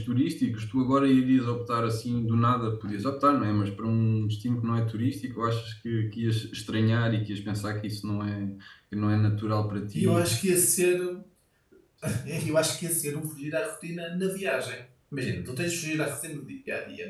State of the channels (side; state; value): both; identical; correlation 1.00